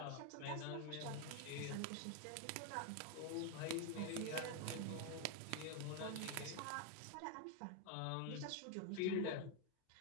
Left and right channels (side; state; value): both; different; correlation 0.01